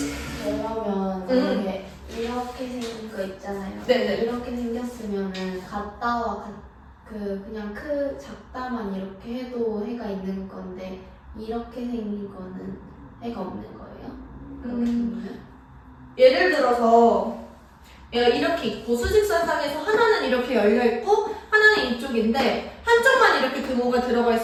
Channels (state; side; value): identical; both; correlation 1.00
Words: 그러면 이게 이렇게 생긴 거 있잖아요. 네네. 이렇게 생겼으면은 같다와 그냥 작다만 이렇게 해도 해가 있는 건데 이렇게 생긴 거는 해가 없는 거예요? 그렇게 생기면? 예를 들어서 얘가 이렇게 있고 수직선상에서 하나는 이렇게 열려 있고 하나는 이쪽인데 한쪽만 이렇게 등호가 들어가